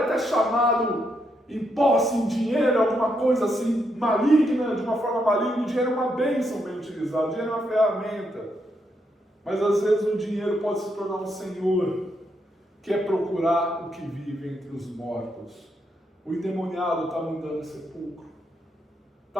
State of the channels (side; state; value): both; normal; correlation 0.79